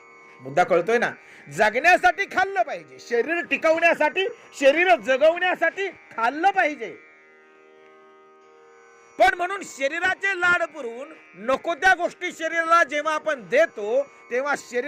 मुद्दा कळतोय ना. जगण्यासाठी खाल्लं पाहिजे, शरीर टिकवण्यासाठी, शरीर जगवण्यासाठी खाल्लं पाहिजे. पण म्हणून शरीराचे लाड पुरवून नको त्या गोष्टी शरीराला जेव्हा आपण देतो तेव्हा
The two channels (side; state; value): both; identical; correlation 1.00